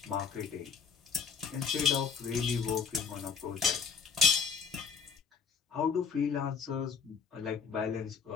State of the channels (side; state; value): right; quieter; 6.2 dB